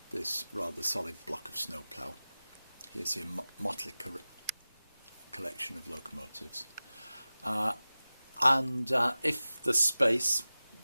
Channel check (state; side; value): inverted; both; correlation -0.96